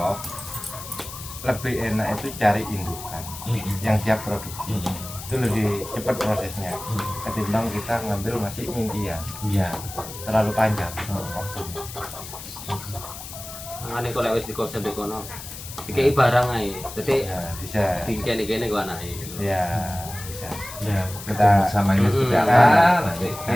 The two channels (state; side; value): noise; left; hiss, 12 dB below the sound